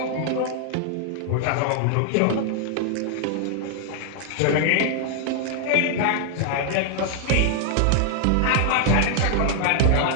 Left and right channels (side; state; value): both; different; correlation -0.01